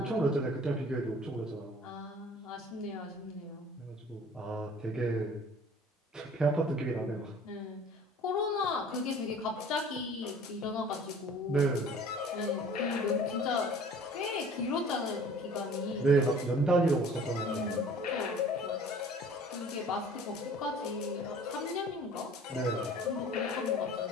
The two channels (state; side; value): normal; both; correlation 0.48